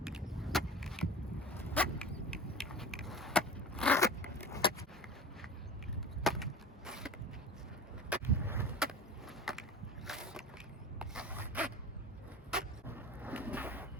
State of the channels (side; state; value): both; normal; correlation 0.35